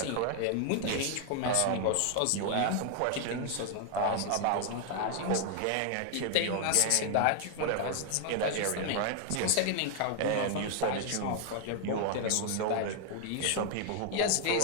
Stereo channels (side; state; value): both; different; correlation 0.00